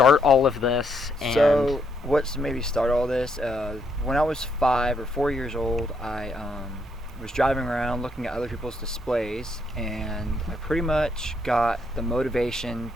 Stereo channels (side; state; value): both; normal; correlation 0.74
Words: all of this. So what's made me start all this? When I was 5 or 4 years old, I was driving around looking at other people's displays, and I pretty much got the motivation